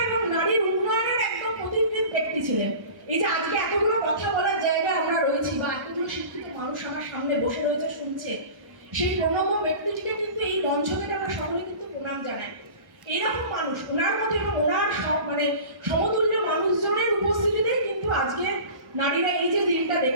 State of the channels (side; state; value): left; late; 1.1 ms